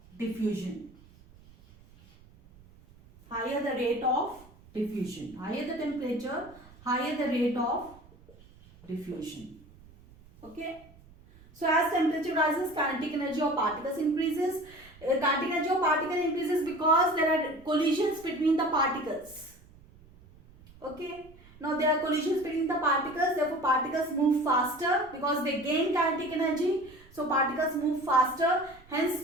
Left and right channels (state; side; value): noise; right; rumble, 24 dB below the sound